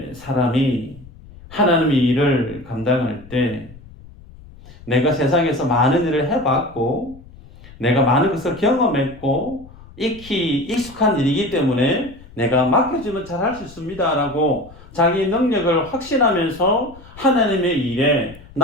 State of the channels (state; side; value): noise; left; rumble, 21 dB below the sound